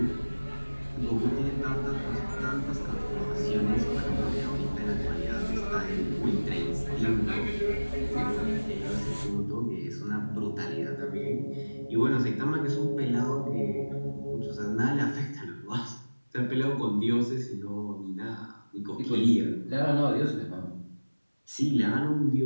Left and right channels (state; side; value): inverted; both; correlation -1.00